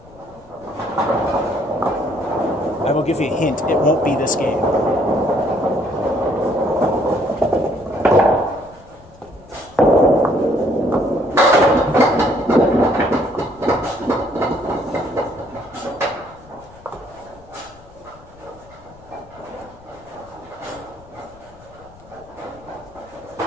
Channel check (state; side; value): noise; left; rumble, 24 dB below the sound